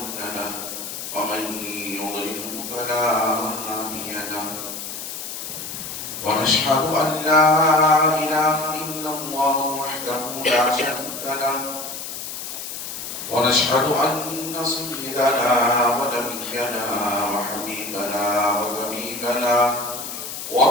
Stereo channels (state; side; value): noise; left; hiss, 8 dB below the sound